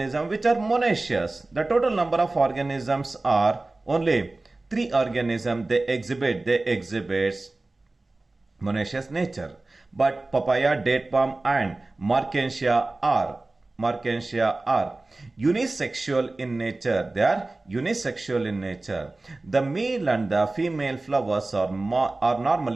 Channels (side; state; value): left; quieter; 3.1 dB